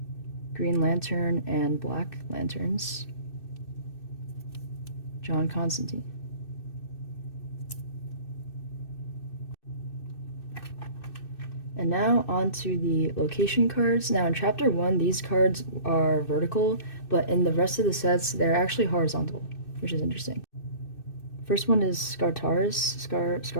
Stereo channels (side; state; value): right; late; 2.6 ms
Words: Green Lantern and Black Lanterns, John Constantine. And now on to the location cards. Now in Chapter 1, these cards are vertical, but in the rest of the sets, they're actually horizontal, which is interesting. First one is